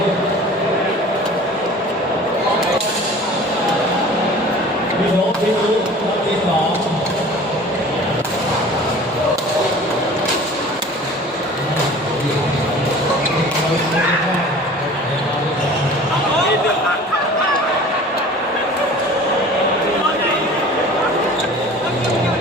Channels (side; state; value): both; normal; correlation 0.43